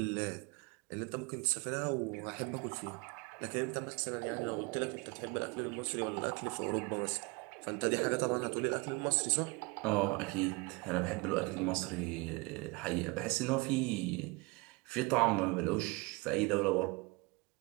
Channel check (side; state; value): left; quieter; 25.9 dB